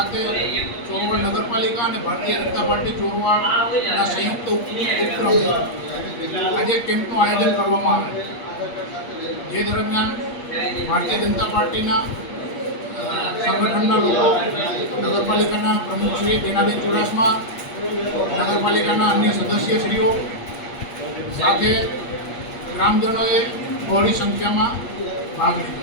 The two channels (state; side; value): late; right; 8.5 ms